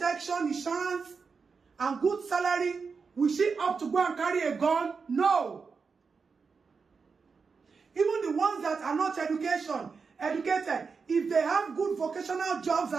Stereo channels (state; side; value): quieter; left; 5.1 dB